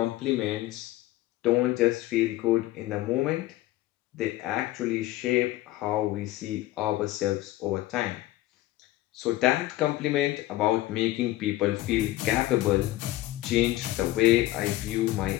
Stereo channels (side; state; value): right; quieter; 16.5 dB